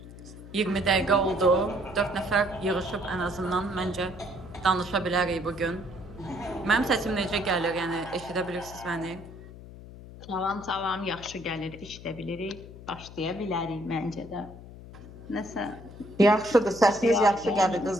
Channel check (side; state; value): left; noise; hum, 16 dB below the sound